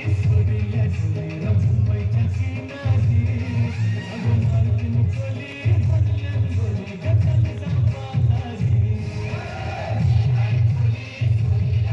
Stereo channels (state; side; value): identical; both; correlation 1.00